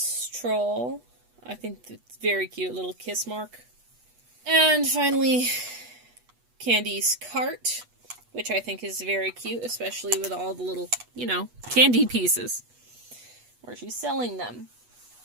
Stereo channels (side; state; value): left; late; 8.3 ms